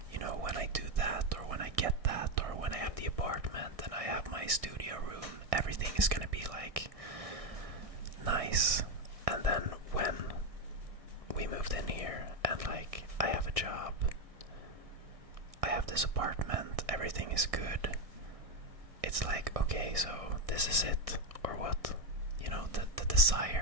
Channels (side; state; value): left; late; 1.6 ms